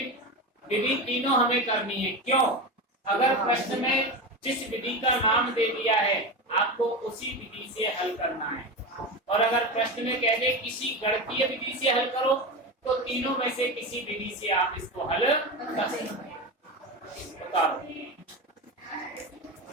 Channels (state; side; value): normal; both; correlation 0.21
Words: विधि तीनों हमें करनी है। क्यों? अगर प्रश्न में जिस विधि का नाम दे दिया है आपको उसी विधि से हल करना है, और अगर प्रश्न में कह दे किसी गणितीय विधि से हल करो तो तीनों में से किसी विधि से आप इसको हल कर सकते हैं।